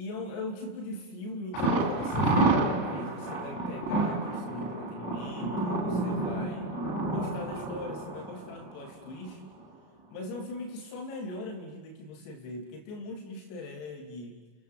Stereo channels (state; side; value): late; right; 33 ms